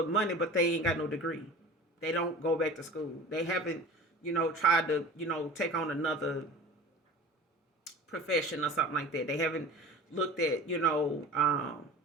money, but they ain't got no degree. They don't go back to school. They haven't, tried to, take on another profession or something like that. They haven't looked at,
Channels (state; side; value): normal; both; correlation 0.39